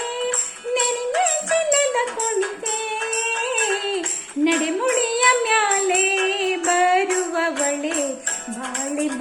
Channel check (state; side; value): identical; both; correlation 1.00